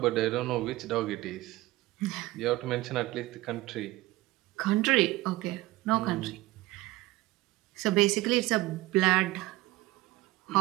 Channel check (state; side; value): quieter; left; 18.1 dB